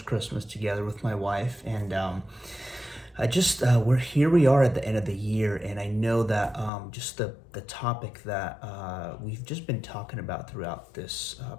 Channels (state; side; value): drops out; right; at 6.7 s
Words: Christmas together with my wife. And we are at the end of the year. And I know that just the topic that we've just been talking about throughout this